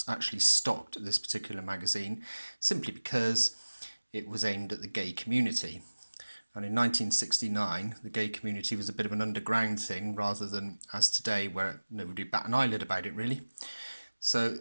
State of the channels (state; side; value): inverted; both; correlation -1.00